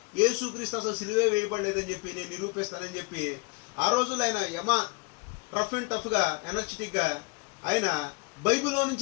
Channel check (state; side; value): quieter; right; 29.6 dB